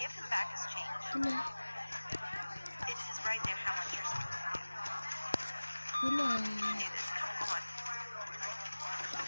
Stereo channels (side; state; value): both; inverted; correlation -1.00